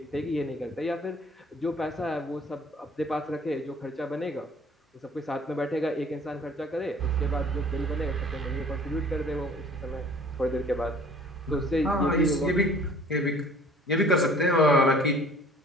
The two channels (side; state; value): both; normal; correlation 0.51